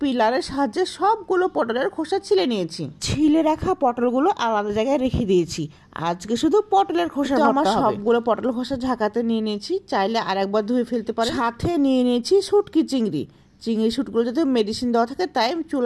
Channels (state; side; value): identical; both; correlation 1.00